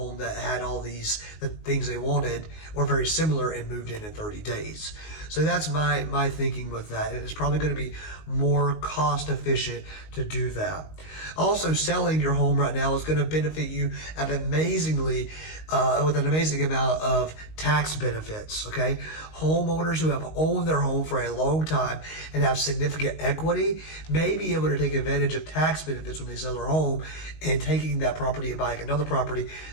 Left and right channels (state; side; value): late; right; 19 ms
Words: that had all the things they wanted or very similar and moved in 30 days. So that's my thinking with that, and it's probably going to be more cost efficient to do that. Also, selling your home right now is going to benefit you with an amazing amount of tax benefits. Okay, homeowners who have owned their home for a long time and have significant equity may be able to take advantage of tax benefits when they sell their home and taking that property and buying another property.